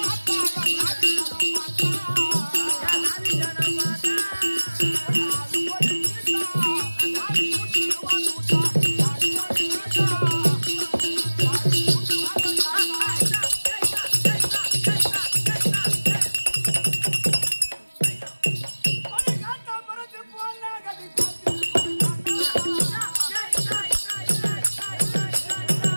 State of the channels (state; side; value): inverted; both; correlation -1.00